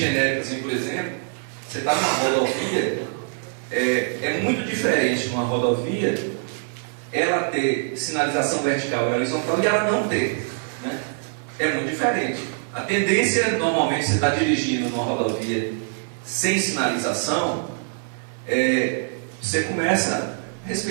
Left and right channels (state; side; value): silent; left; 58 dB below the other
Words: assim, por exemplo, você está numa rodovia, é muito diferente numa rodovia ela ter sinalização vertical e horizontal e ela não ter. Né? É muito diferente. A tendência, normalmente, você está dirigindo numa rodovia sem sinalização, você começa